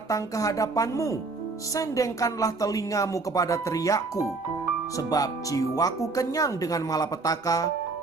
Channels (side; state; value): left; quieter; 3.8 dB